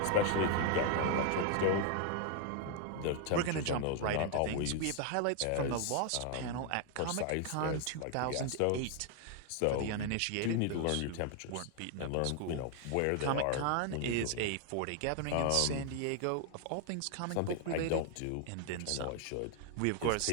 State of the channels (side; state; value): both; different; correlation 0.00